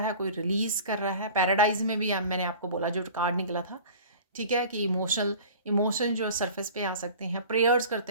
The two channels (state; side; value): inverted; both; correlation -0.41